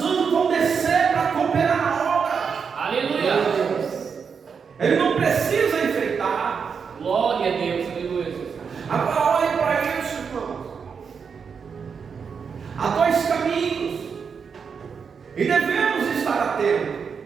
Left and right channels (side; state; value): left; quieter; 6.2 dB